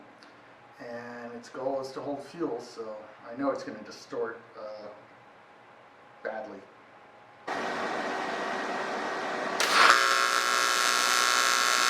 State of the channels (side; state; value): both; identical; correlation 1.00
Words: and its goal is to hold fuel, so I know it's going to distort badly.